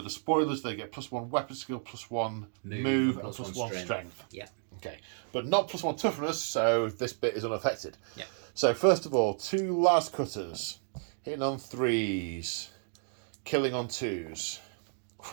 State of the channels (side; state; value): left; silent; 56 dB below the other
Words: Despoilers. They get +1 weapon skill, +1 move, and +1 strength. Yeah. Okay. But not +1 toughness, so this bit is unaffected. Yeah. So first of all, 2 las cutters. Hitting on 3s. Killing on 2s.